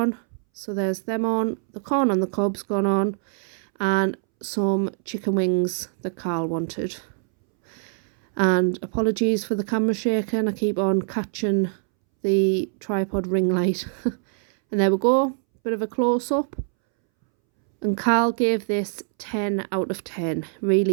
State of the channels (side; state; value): left; silent; 63 dB below the other